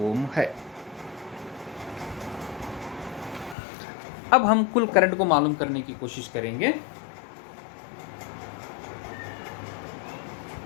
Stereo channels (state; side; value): drops out; right; at 3.6 s